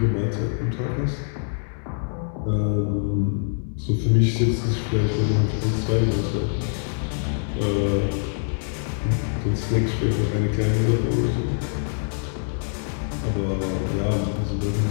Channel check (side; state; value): right; silent; digital silence